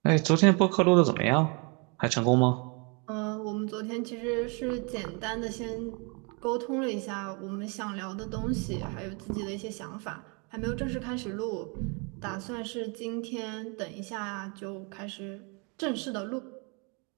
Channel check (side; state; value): left; quieter; 33.0 dB